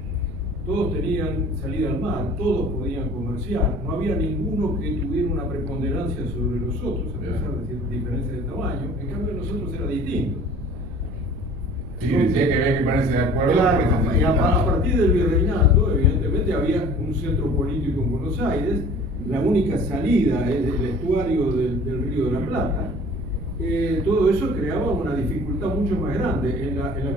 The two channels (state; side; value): noise; right; rumble, 13 dB below the sound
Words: todos tenían salida al mar, todos podían comerciar, no había ninguno que tuviera una preponderancia sobre los otros, a pesar de ciertas diferencias de tamaño. En cambio, nosotros era distinto. Sí, decía que había que ponerse de acuerdo. Claro, y a partir del virreinato, evidentemente, había un centro político en Buenos Aires. La única salida es el estuario del Río de la Plata. Todo eso creaba una dificultad mucho más grande. En la